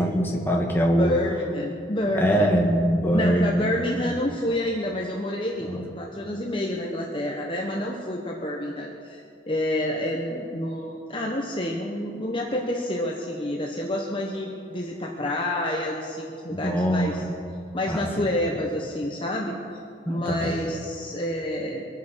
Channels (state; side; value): normal; both; correlation 0.61